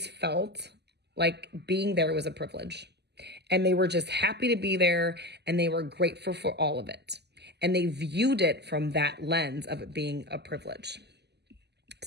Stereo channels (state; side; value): late; left; 0.49 ms